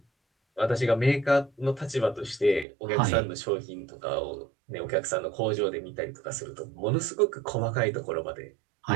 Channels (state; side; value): drops out; left; at 2.7 s